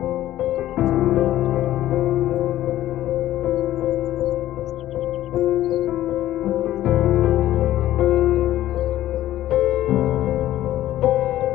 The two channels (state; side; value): quieter; right; 13.7 dB